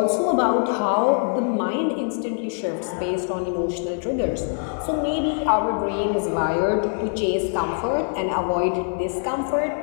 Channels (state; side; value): silent; right; 62 dB below the other